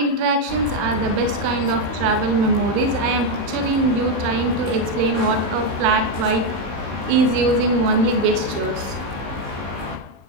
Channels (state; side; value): late; left; 17 ms